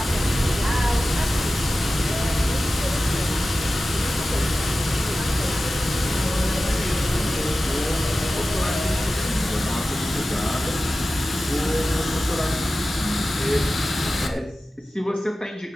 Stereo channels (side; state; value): both; normal; correlation 0.95